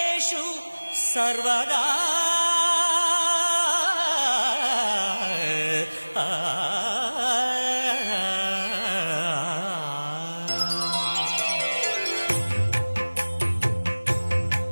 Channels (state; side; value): inverted; both; correlation -1.00